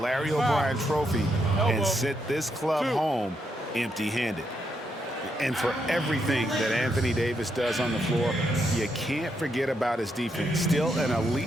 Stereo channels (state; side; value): normal; both; correlation 0.79